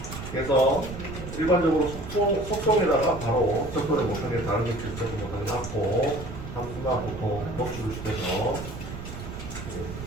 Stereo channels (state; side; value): noise; right; rumble, 10 dB below the sound